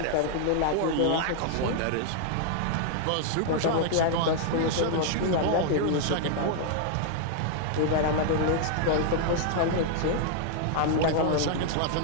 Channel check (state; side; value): different; both; correlation -0.01